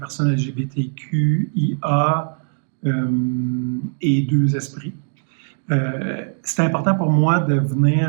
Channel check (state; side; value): silent; left; digital silence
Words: LGBTQIA et deux esprits. C'était important pour moi de